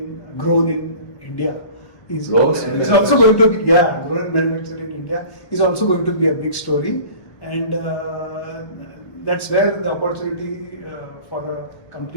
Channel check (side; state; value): right; late; 1.2 ms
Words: grown in India, is also going to be, grown and manufactured in India, is also going to be a big story. And that's where the opportunity for a